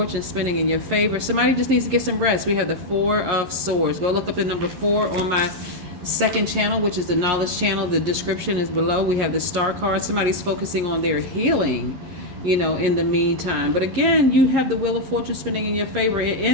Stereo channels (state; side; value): late; left; 11 ms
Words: spinning in your favor. Somebody just needs to get some rest. We have the Four of Swords. Go look up the number 4 on my second channel, which is the knowledge channel. The description is below. We have the Star card. Somebody's focusing on their healing, in the meantime. But again, you have the Wheel of Fortune spinning in your favor